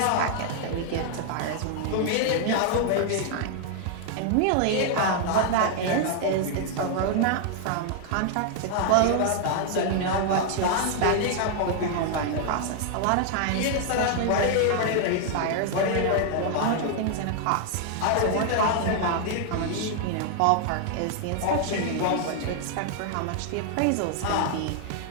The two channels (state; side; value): different; both; correlation 0.00